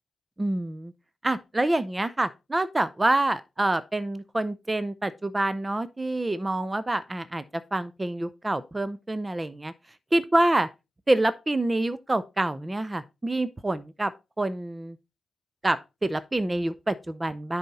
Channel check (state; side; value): normal; both; correlation 0.98